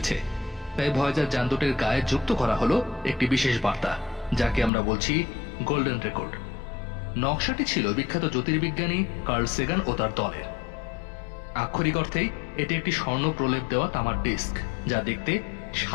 তাই ভয়েজার যান দুটির গায়ে যুক্ত করা হলো একটি বিশেষ বার্তা, যাকে আমরা বলছি গোল্ডেন রেকর্ড। নকশাটি ছিল বিখ্যাত জ্যোতির্বিজ্ঞানী কার্ল সেগান ও তার দলের। আক্ষরিক অর্থেই এটি একটি স্বর্ণ প্রলেপ দেওয়া তামার ডিস্ক, যা দেখতে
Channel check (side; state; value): right; drops out; at 4.7 s